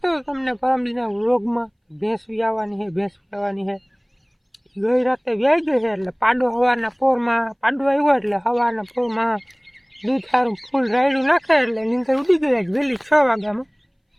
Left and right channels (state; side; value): identical; both; correlation 1.00